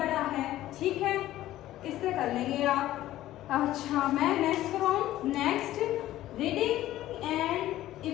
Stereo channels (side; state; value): right; quieter; 14.4 dB